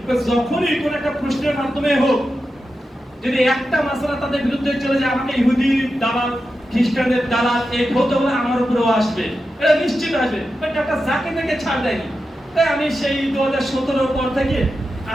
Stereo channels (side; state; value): both; normal; correlation 0.90